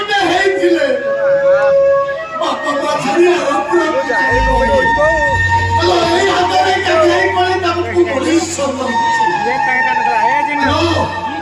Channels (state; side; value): identical; both; correlation 1.00